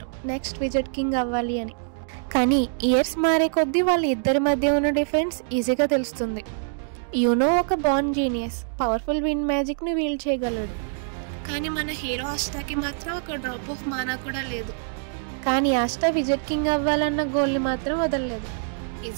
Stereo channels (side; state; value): left; silent; digital silence